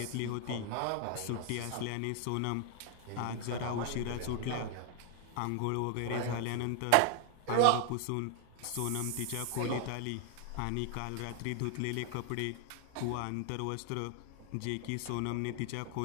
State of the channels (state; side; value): different; both; correlation 0.00